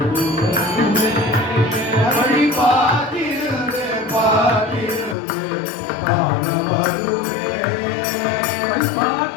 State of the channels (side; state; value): right; drops out; at 5.2 s